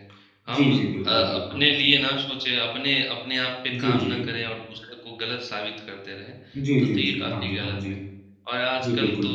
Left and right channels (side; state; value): both; identical; correlation 1.00